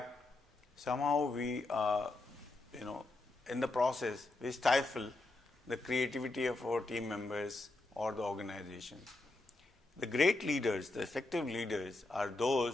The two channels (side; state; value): right; quieter; 3.0 dB